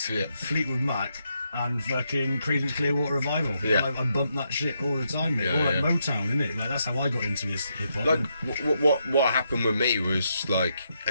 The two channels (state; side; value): inverted; both; correlation -0.80